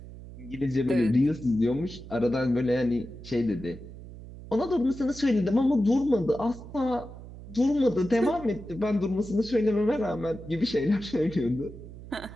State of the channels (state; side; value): noise; right; hum, 15 dB below the sound